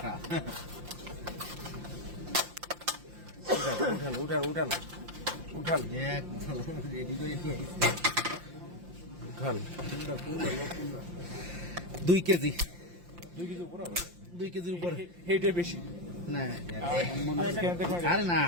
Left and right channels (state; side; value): late; left; 5.7 ms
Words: উঠান উঠান উঠান উঠান রেডি করে নিয়ে উঠান। 2 কেজি 2 কেজি উপরে হবে, 2 কেজির উপরে এইটা বেশি না আরে না